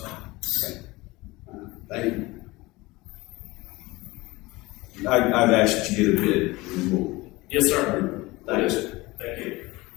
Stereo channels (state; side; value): quieter; right; 21.4 dB